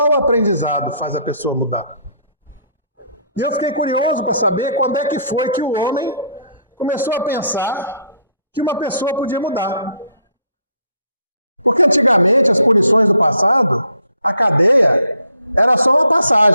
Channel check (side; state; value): both; inverted; correlation -0.66